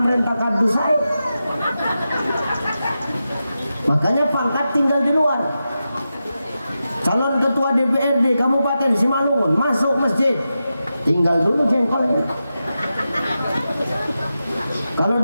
kardus saya. Makanya pangkat tinggal di luar. Calon ketua DPRD Kabupaten Simalungun masuk masjid, tinggal dulu jengkolnya. Kalau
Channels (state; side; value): inverted; both; correlation -0.91